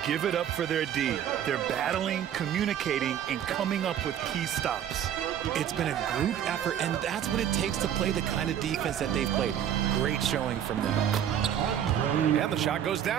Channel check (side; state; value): left; quieter; 9.9 dB